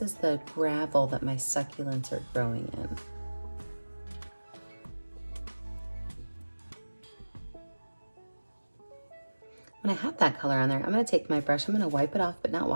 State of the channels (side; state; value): both; inverted; correlation -1.00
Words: the gravel that my succulents are growing in. When I have that color on there, I'm gonna take my brush, I'm gonna wipe it off but not